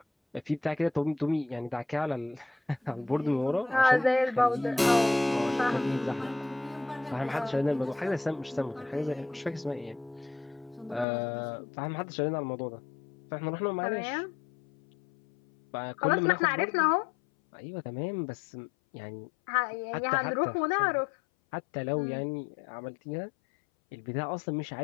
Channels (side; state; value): right; drops out; at 11.1 s